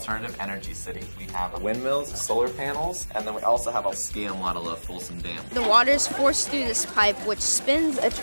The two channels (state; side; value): inverted; both; correlation -1.00